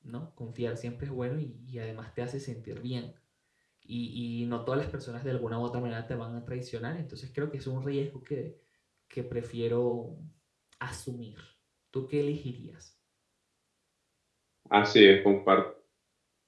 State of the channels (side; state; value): both; identical; correlation 1.00